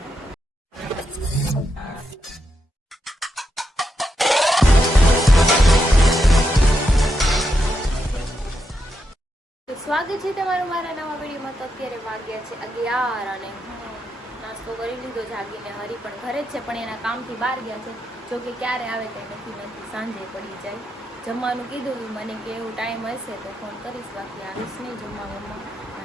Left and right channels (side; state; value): both; normal; correlation 0.83